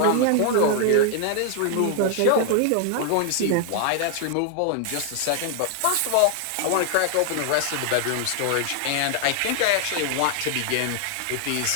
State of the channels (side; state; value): both; different; correlation 0.00